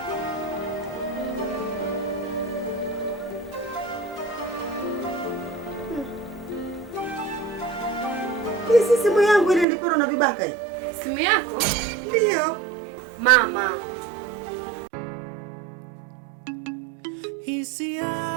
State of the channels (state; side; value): drops out; left; at 9.7 s